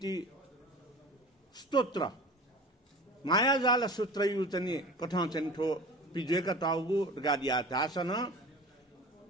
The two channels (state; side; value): normal; both; correlation 0.37